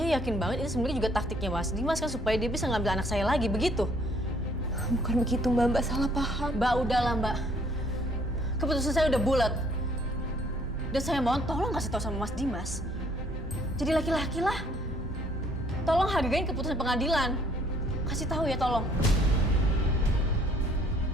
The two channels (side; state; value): both; normal; correlation 0.62